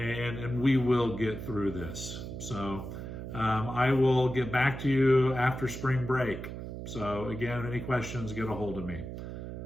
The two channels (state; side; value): noise; right; hum, 8 dB below the sound